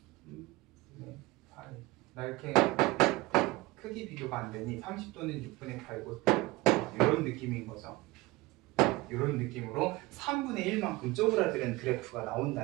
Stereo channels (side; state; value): left; quieter; 21.1 dB